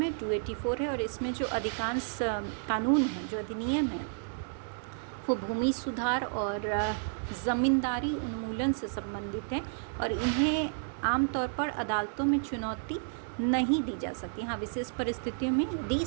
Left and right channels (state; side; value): silent; left; digital silence